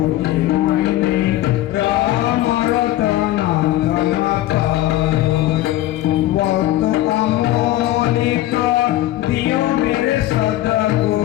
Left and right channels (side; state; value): right; quieter; 15.0 dB